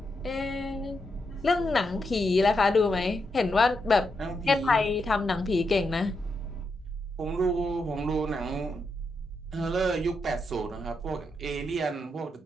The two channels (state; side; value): normal; both; correlation 0.83